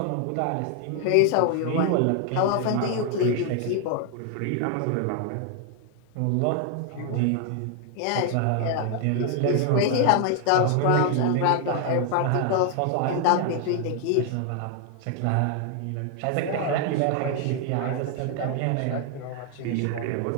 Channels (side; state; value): both; different; correlation 0.00